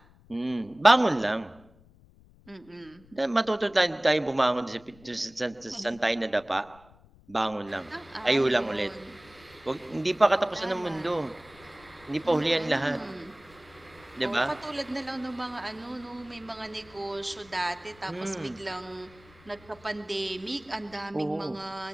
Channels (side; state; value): left; noise; rumble, 26 dB below the sound